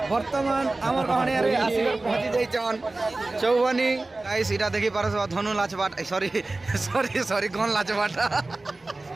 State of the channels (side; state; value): left; quieter; 3.1 dB